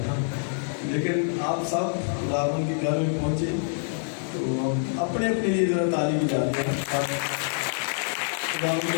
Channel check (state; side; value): silent; right; 58 dB below the other